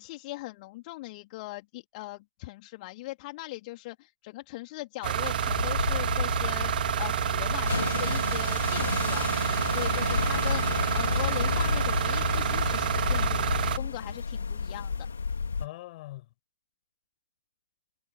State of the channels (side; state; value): both; inverted; correlation -0.52